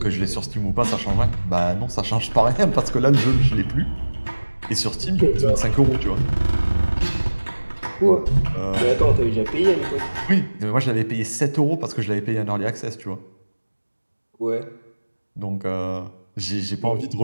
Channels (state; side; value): inverted; both; correlation -1.00